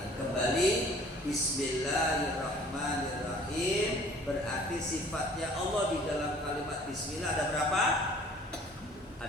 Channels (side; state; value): both; normal; correlation 0.52